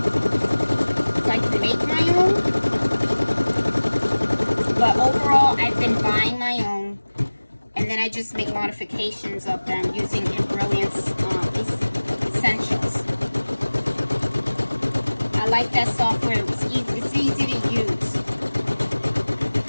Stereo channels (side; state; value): both; inverted; correlation -1.00